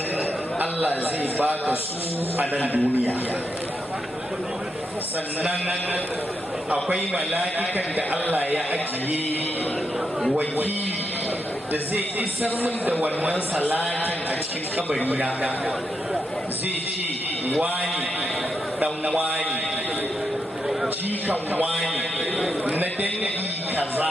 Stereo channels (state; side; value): normal; both; correlation 0.83